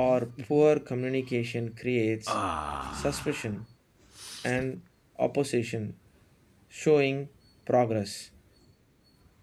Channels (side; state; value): both; identical; correlation 1.00